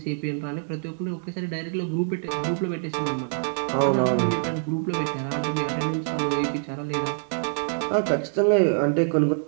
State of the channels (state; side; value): silent; left; digital silence